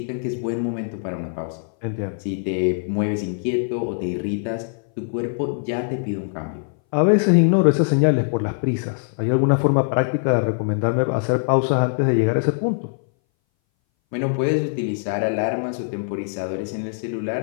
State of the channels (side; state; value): right; silent; 60 dB below the other